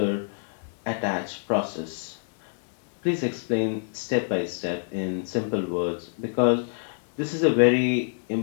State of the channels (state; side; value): silent; right; 61 dB below the other